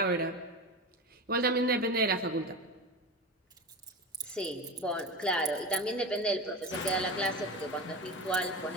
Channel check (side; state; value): both; normal; correlation 0.25